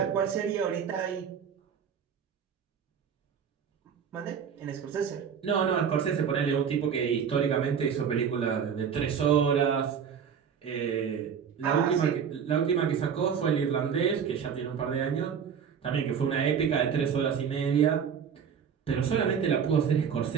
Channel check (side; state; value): left; quieter; 7.4 dB